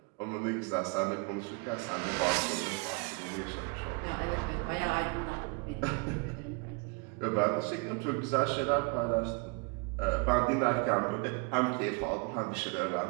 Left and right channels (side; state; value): left; quieter; 30.4 dB